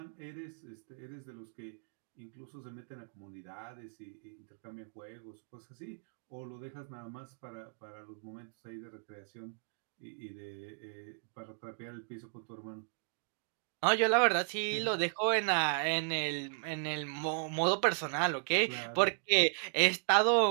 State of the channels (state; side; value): silent; left; digital silence